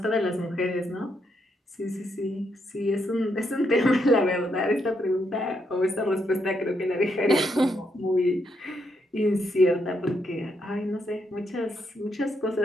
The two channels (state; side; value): normal; both; correlation 0.78